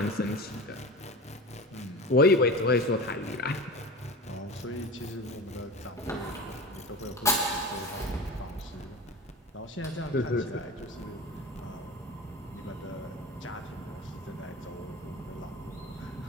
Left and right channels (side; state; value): both; normal; correlation 0.31